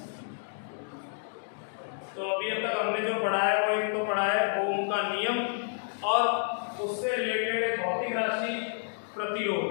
तो अभी तक हमने जो पढ़ा है वो एक तो पढ़ा है ओम का नियम, और उससे रिलेटेड एक भौतिक राशि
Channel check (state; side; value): silent; right; digital silence